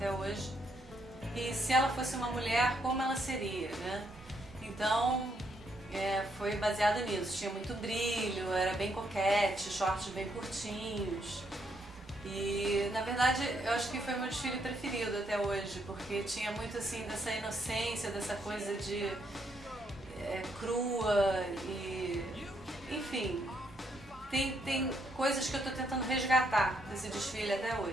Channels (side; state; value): both; normal; correlation 0.75